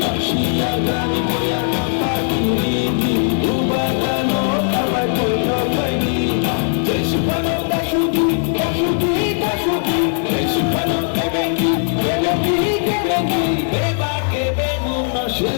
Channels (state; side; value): silent; right; digital silence